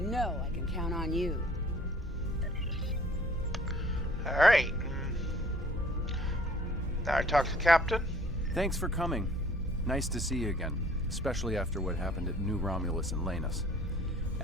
know I can count on you. Alright. Now I talk to Captain. Thanks for coming. Nice to see you again, especially after what happened at New Romulus and Lanus.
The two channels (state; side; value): normal; both; correlation 0.55